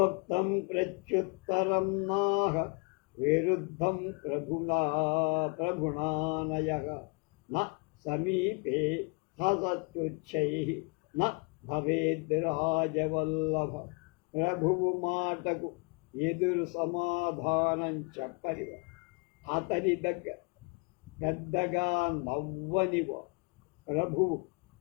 ప్రత్యుత్తరం నాహ విరుద్ధం ప్రభుణానయః న సమీపే హసత్యుచ్చైః న భవేద్ రాజవల్లభ. ప్రభువు మాటకు ఎదురు సమాధానం చెప్పనివ, అతని దగ్గర పెద్దగా నవ్వనివ ప్రభువు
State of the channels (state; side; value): quieter; right; 33.5 dB